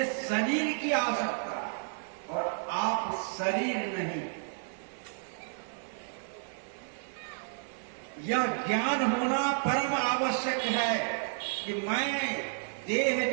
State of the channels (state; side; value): silent; left; 57 dB below the other